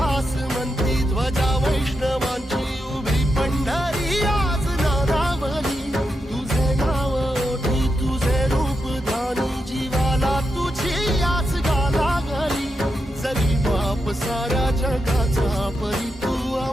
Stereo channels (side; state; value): both; normal; correlation 0.86